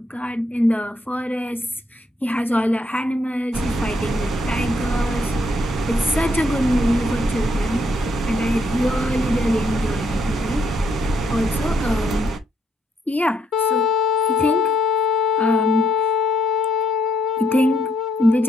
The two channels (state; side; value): normal; both; correlation 0.73